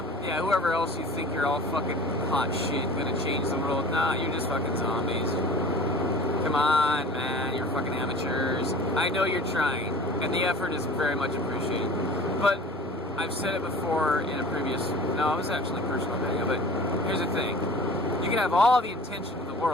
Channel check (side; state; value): both; normal; correlation 0.42